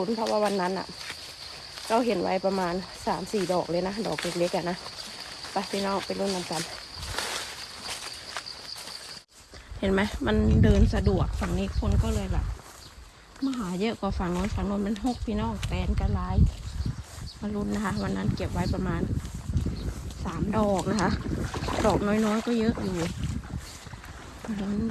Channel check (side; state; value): both; identical; correlation 1.00